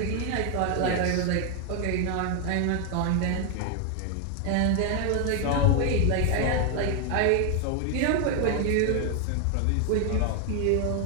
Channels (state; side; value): different; both; correlation 0.01